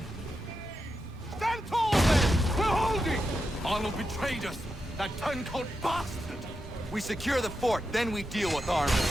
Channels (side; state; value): both; normal; correlation 0.87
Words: Stand tall, men! We're holding! Arnold betrayed us! That turncoat bastard! We secure the fort, then we deal with Arnold.